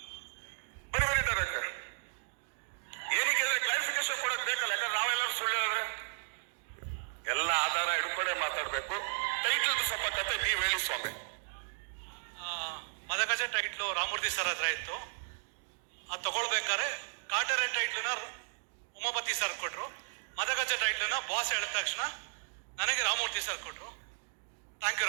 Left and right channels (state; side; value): silent; left; digital silence